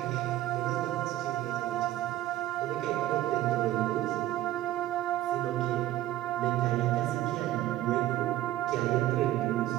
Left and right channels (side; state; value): left; quieter; 14.5 dB